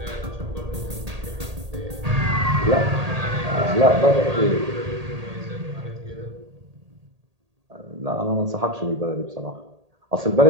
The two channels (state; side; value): late; left; 1.8 ms